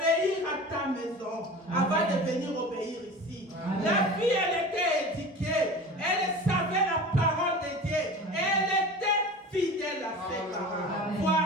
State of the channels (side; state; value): both; normal; correlation 0.36